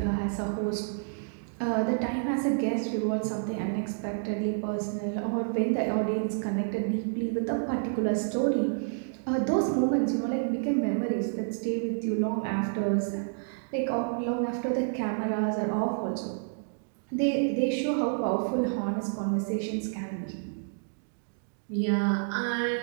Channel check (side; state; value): left; silent; digital silence